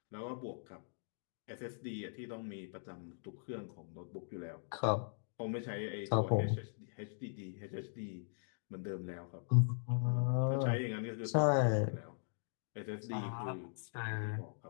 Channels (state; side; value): silent; right; digital silence